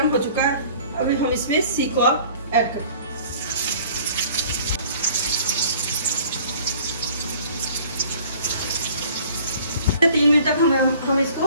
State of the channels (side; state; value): both; inverted; correlation -0.51